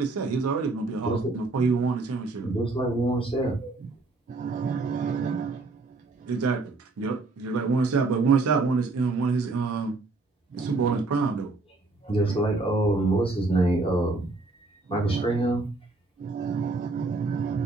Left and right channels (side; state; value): left; quieter; 3.4 dB